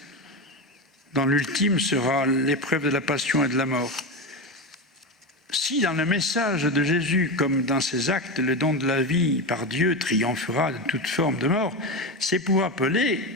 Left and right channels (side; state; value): both; normal; correlation 0.17